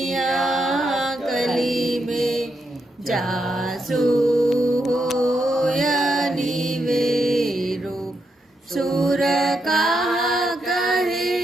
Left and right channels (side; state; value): both; normal; correlation 0.82